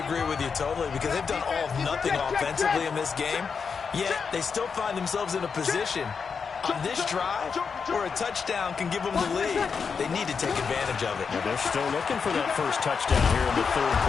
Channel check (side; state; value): right; quieter; 5.8 dB